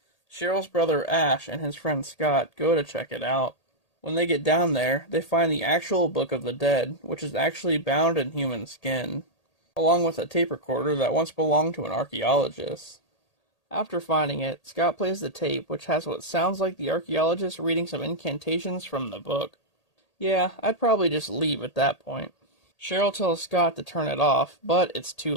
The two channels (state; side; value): late; right; 1.8 ms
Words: Cheryl's brother Ash and his friend Scott go to check it out. When they get down there, they find the actual Book of the Dead, which is actually bound in human skin, along with a tape recorder that once belonged to an archaeologist. After finding it, Scott plays the tape, which has what sounds like the archaeologist reading some incantations from the book. Yeah, I'd probably just leave at that point. Cheryl tells Scott to turn it off, but it's too